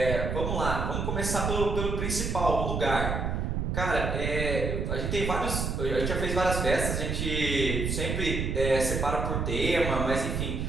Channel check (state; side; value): noise; right; rumble, 1 dB below the sound